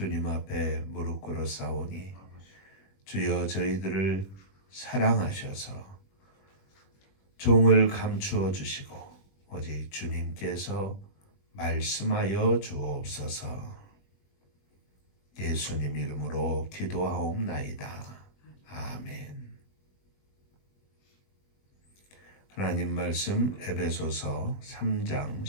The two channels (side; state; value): right; late; 21 ms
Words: 앞에 무릎 꿇어 싸우니 주여 저희들을 사랑하셔서 종을 감추어 주시고 오직 주님께서 말씀하여 주옵소서. 예수님 이름으로 기도하옵나이다. 아멘. 하나님 말씀 에베소서 3장